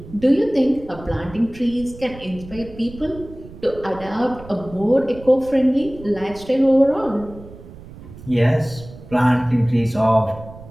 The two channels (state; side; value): noise; right; rumble, 17 dB below the sound